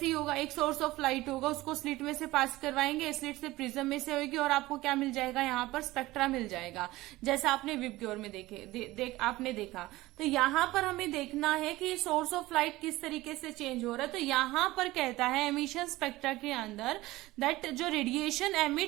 ही होगा, एक सोर्स ऑफ लाइट होगा, उसको स्लिट में से पास करवाएंगे, स्लिट से प्रिज्म में से होगी और आपको क्या मिल जाएगा, यहाँ पर स्पेक्ट्रा मिल जाएगा, जैसा आपने विबग्योर में आपने देखा। तो यहाँ पर हमें देखना है कि सोर्स ऑफ लाइट किस तरीके से चेंज हो रहा है। तो यहाँ पर कहता है एमिशन स्पेक्ट्रा के अंदर दैट जो रेडिएशन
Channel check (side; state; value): left; quieter; 18.4 dB